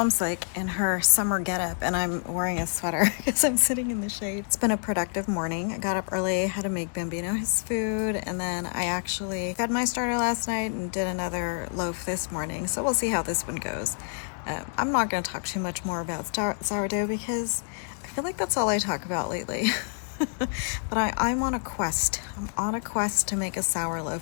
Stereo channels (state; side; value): silent; right; 60 dB below the other